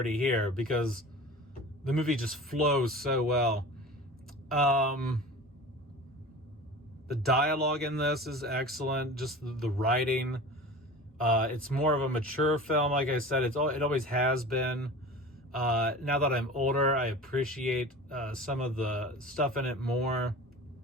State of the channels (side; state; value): both; normal; correlation 0.36